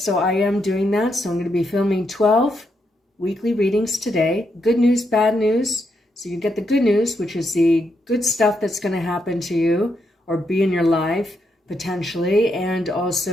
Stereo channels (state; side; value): normal; both; correlation 0.80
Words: I am doing that. So I'm going to be filming 12 weekly readings today. Good news, bad news. So you get the good news, which is the good stuff that's going to happen to you or be in your life potentially, and